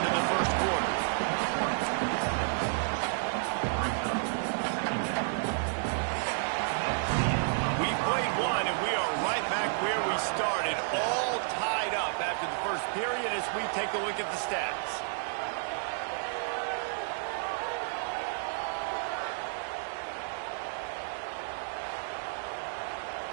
of the first quarter. We played one, and we are right back where we started, all tied up after the first period as we take a look at the stats.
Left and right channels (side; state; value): left; silent; digital silence